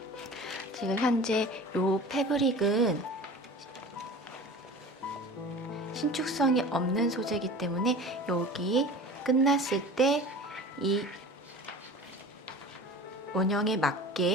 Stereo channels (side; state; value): both; normal; correlation 0.38